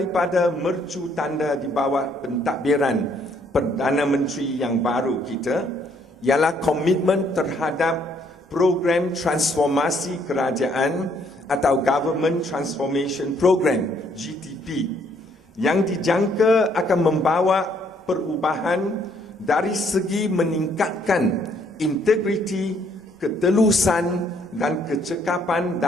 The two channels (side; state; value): both; normal; correlation 0.67